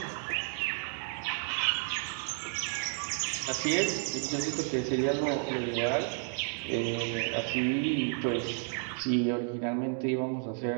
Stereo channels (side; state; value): left; silent; 55 dB below the other